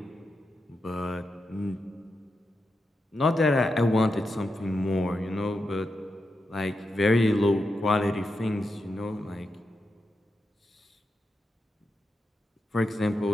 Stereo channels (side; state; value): both; normal; correlation 0.87